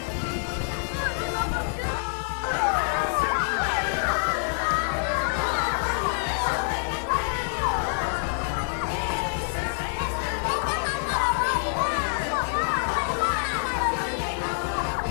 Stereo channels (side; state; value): right; silent; 61 dB below the other